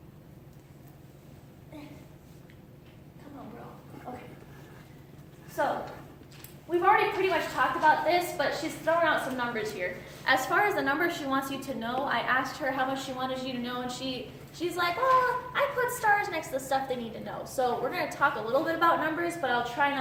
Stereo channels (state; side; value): identical; both; correlation 1.00